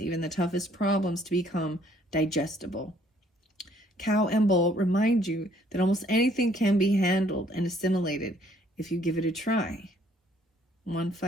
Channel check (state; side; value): normal; both; correlation 0.63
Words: the toughest problems to become digestible. Cow and bull remind you that almost anything can be handled and assimilated if you give it a try.